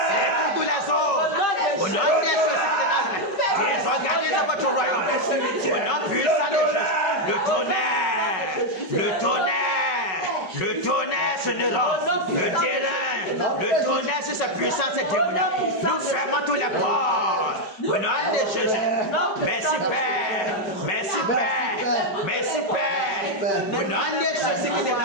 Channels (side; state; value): right; late; 5.4 ms